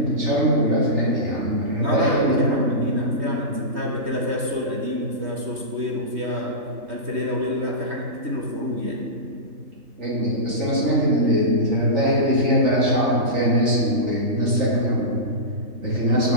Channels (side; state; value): left; late; 3.2 ms